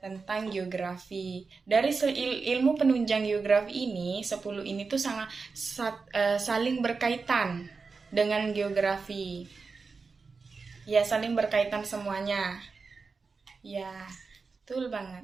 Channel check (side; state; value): left; quieter; 4.6 dB